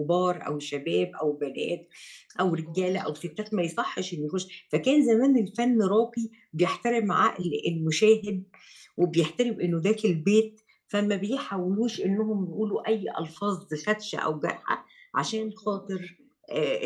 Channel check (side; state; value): both; identical; correlation 1.00